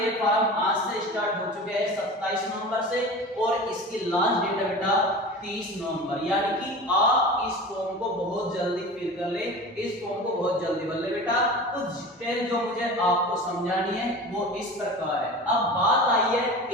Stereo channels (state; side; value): normal; both; correlation 0.34